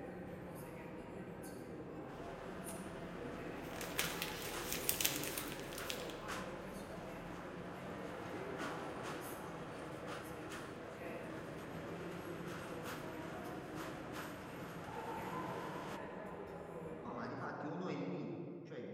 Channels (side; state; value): both; identical; correlation 1.00